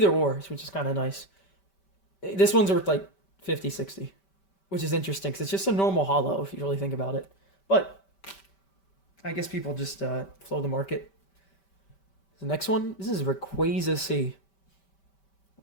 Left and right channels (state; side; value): late; right; 5.2 ms